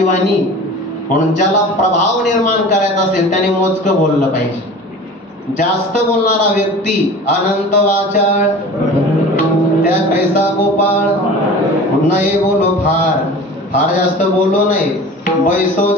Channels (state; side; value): normal; both; correlation 0.39